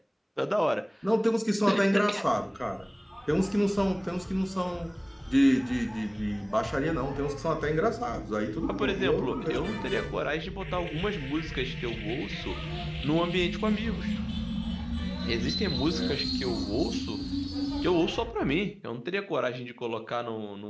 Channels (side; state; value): both; identical; correlation 1.00